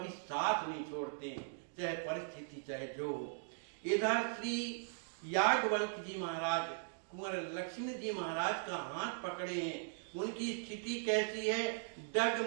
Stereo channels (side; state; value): left; silent; digital silence